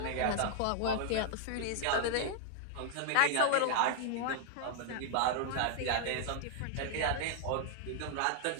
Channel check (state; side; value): different; both; correlation 0.00